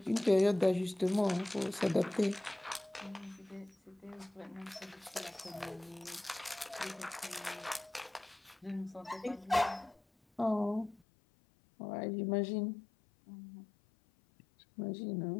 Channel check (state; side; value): drops out; right; at 11.0 s